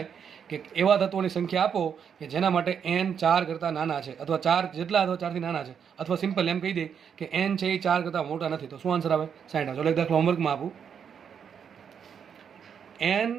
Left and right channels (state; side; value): quieter; left; 7.5 dB